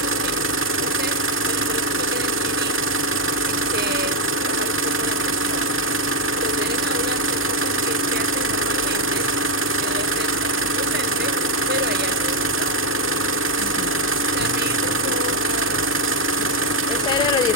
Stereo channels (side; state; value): both; normal; correlation 0.02